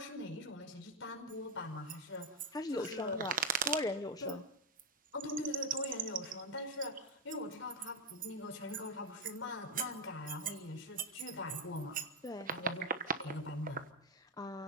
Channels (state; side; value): normal; both; correlation 0.07